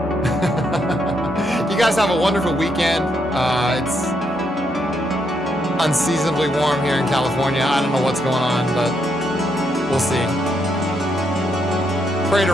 You guys have a wonderful weekend. It's unseasonably warm here in California. I don't know what's going on, but we'll see. Pray to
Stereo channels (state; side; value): normal; both; correlation 0.77